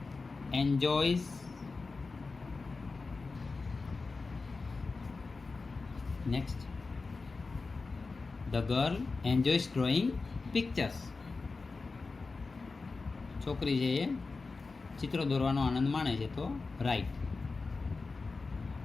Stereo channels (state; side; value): quieter; right; 4.0 dB